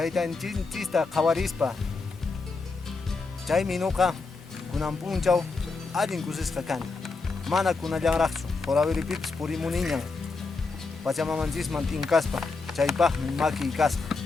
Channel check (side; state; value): right; quieter; 4.1 dB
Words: qawarispa. Chaymi nuqa kunan punchaw allin kusisqa kani. Mana kunallanraqchu, horawiripipis purimuniñan. Pachamanchisman tinkaspa, chaypaqmi maki kasqa.